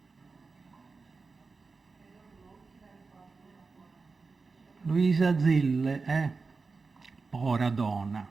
Luisa Zille, povera donna,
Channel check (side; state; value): left; quieter; 4.3 dB